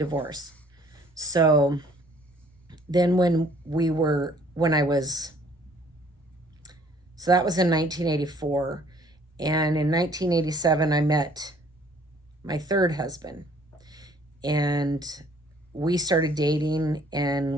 So then so that was in 1984. And in 1987, I met my third husband. And we started dating,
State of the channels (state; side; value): normal; both; correlation 0.58